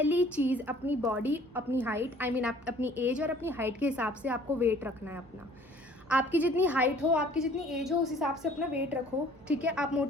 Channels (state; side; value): normal; both; correlation 0.53